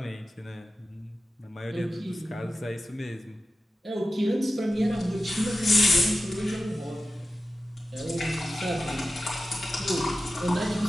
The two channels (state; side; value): normal; both; correlation 0.93